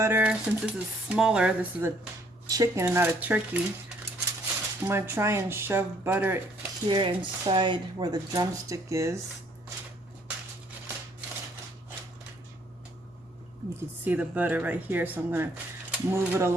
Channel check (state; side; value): normal; both; correlation 0.64